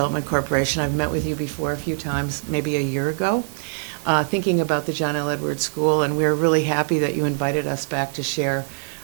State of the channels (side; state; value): left; silent; digital silence